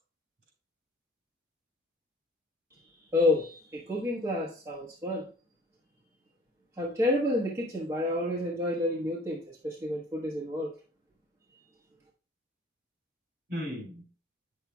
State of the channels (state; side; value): normal; both; correlation 0.50